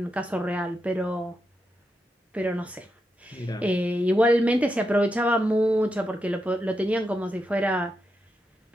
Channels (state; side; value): normal; both; correlation 0.86